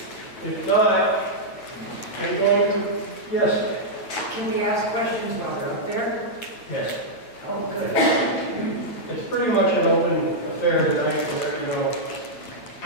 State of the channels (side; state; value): right; late; 9.0 ms